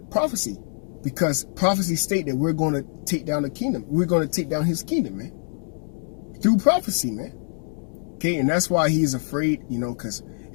prophecy, because prophecy state that we're going to take down the kingdom. We're going to take down his kingdom, man, through prophecy, man. Okay, and that's why he's afraid, you know, because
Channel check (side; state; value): right; silent; digital silence